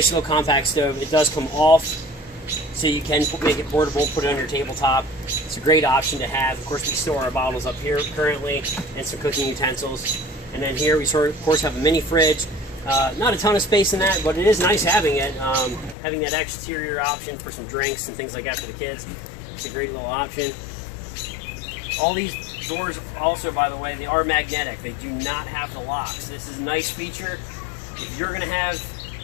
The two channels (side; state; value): right; drops out; at 16.0 s